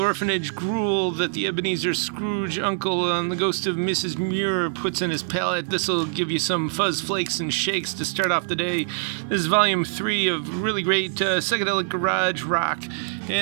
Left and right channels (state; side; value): silent; left; digital silence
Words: gruel that the Ebenezer Scrooge uncle on the ghost of Mrs. Muir puts in his palate, this'll give you some fuzz flakes and shakes to start off the day. This is volume 3 of really great psychedelic garage rock,